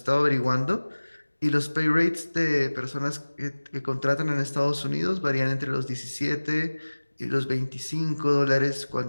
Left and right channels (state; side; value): inverted; both; correlation -1.00